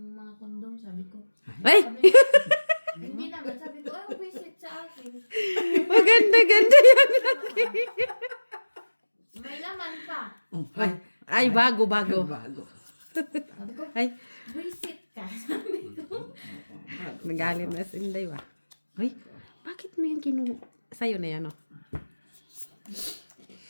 mga kondom? Sabi ko. Ay! Sabi, hindi naman. Sabi ko, ay, visit sa akin. Maganda-ganda yan. May laman pa. Ay, ay bago. Bago. Sabi ko, Ay, visit ka. Sabi ko. nagalit na si Inday ba? Ay, bakit mo yan sa'yo na yan, oh?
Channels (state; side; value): inverted; both; correlation -1.00